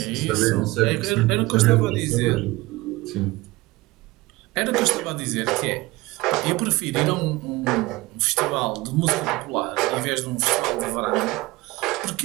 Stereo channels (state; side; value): quieter; left; 20.6 dB